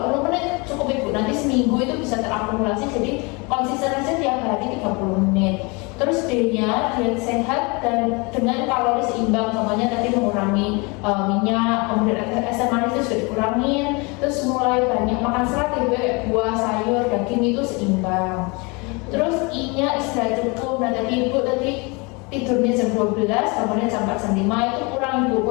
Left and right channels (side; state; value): right; quieter; 28.6 dB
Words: menit cukup Ibu, nanti seminggu itu bisa terakumulasi, jadi konsisten aja tiap hari 30 menit. Terus D-nya diet sehat dan dengan kalori seimbang, contohnya tadi mengurangi minyak, kemudian asam manis itu sudah dikurangin, terus mulai banyak makan serat ya Bu, buah, sayur, daging itu seimbang. Terus I-nya istirahat cukup, nah tadi Ibu tadi tidurnya jam 12, bangunnya jam 4 jam 5, itu